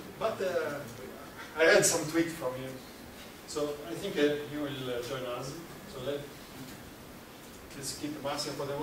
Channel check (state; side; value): identical; both; correlation 1.00